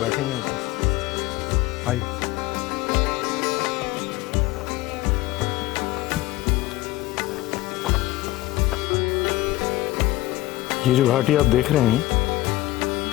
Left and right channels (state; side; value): quieter; right; 17.5 dB